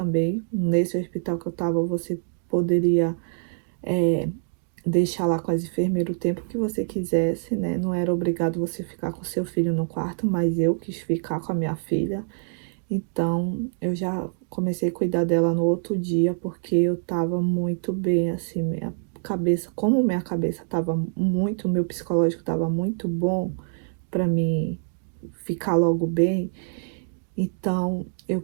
Nesse hospital que eu tava, você poderia deixar lá com as enfermeiras o tempo que você quisesse, né? Não era obrigado você ficar com seu filho no quarto, mas eu quis ficar com a minha filha. Então, eu já comecei a cuidar dela no outro dia, porque eu tava muito bem, assim, minha cabeça, como minha cabeça tava muito, meu psicológico tava muito bom pra mim ficar logo bem. Então, eu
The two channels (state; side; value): silent; left; digital silence